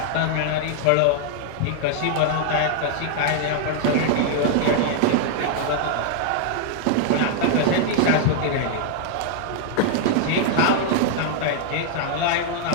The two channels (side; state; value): both; different; correlation 0.00